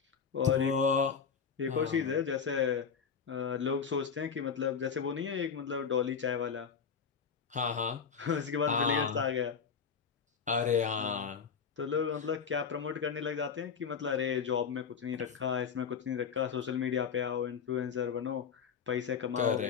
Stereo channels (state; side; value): quieter; right; 6.4 dB